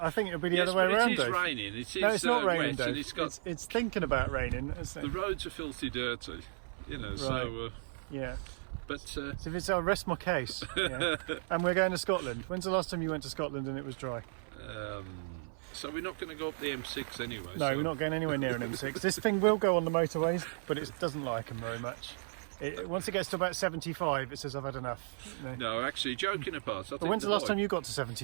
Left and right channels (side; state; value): left; silent; 55 dB below the other